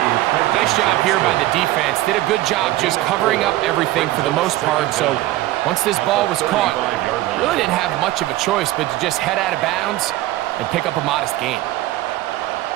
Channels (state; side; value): quieter; left; 16.2 dB